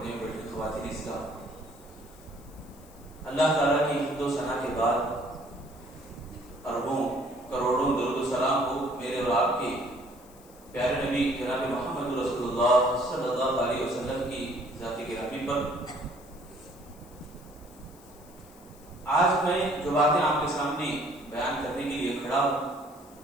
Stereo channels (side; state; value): left; noise; hiss, 25 dB below the sound